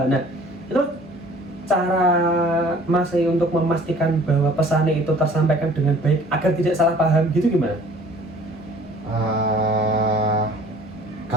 Nah, itu cara Mas untuk memastikan bahwa pesannya itu tersampaikan dengan baik agar tidak salah paham gitu gimana?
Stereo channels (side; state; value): both; normal; correlation 0.51